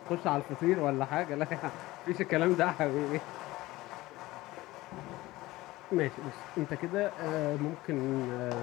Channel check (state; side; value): quieter; right; 18.5 dB